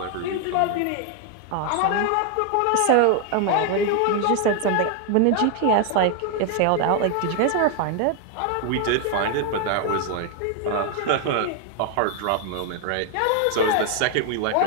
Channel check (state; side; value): different; both; correlation 0.00